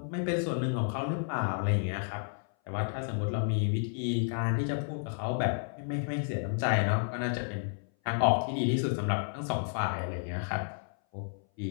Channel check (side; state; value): right; silent; 57 dB below the other